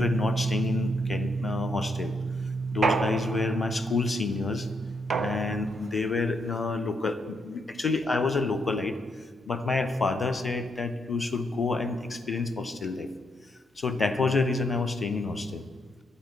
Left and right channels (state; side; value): normal; both; correlation 0.78